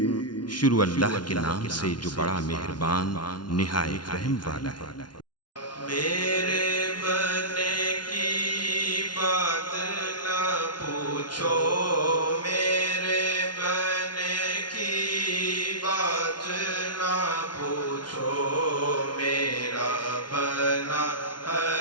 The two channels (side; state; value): right; late; 0.70 ms